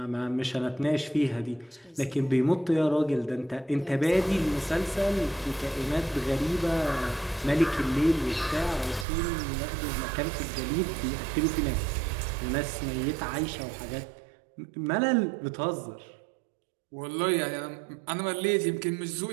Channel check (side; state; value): left; drops out; at 9.1 s